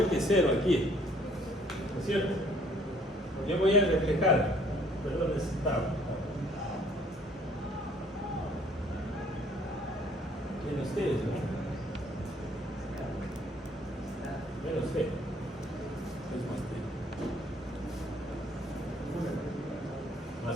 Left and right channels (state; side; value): normal; both; correlation 0.61